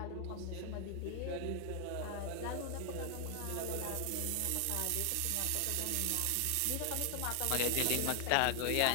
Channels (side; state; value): both; different; correlation 0.00